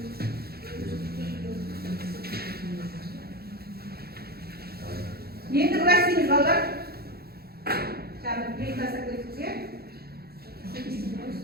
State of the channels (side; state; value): left; late; 0.46 ms